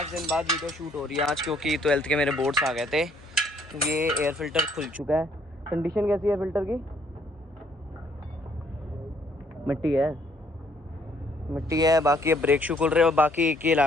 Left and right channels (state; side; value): normal; both; correlation 0.65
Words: दिन बाद वीडियो शूट हो रही है आज, क्योंकि 12th के मेरे बोर्ड्स आ गए थे। ये एयर फिल्टर खुल चुका है। कंडीशन कैसी है फिल्टर की? मिट्टी है। बाकी अब ब्रेक शू खुल रहे हैं और बाकी एक ही लाया